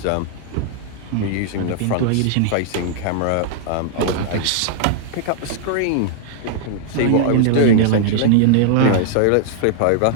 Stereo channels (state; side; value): different; both; correlation -0.01